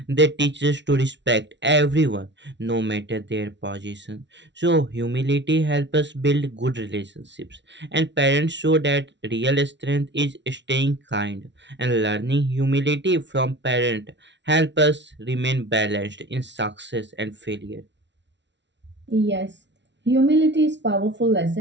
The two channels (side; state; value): left; late; 0.52 ms